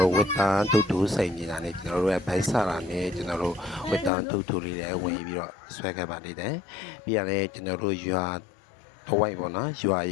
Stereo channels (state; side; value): drops out; right; at 4.1 s